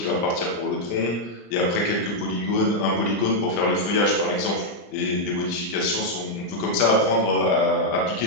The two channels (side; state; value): right; late; 35 ms